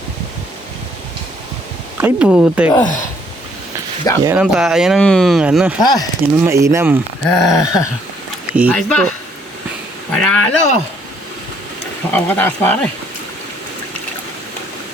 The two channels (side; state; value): both; normal; correlation 0.66